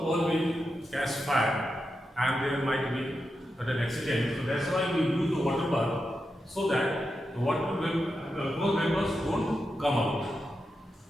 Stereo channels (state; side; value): normal; both; correlation 0.88